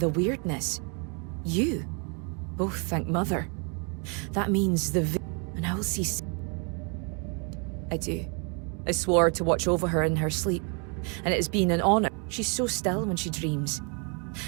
weirdness. You. Oh, thank Mother. That means and I will see... I do. I swore to watch over her in her sleep. And it has been an honor. She's so still when she dreams.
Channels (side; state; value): left; quieter; 36.1 dB